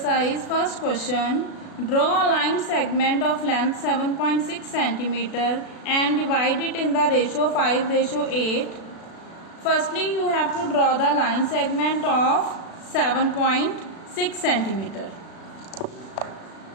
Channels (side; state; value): right; late; 36 ms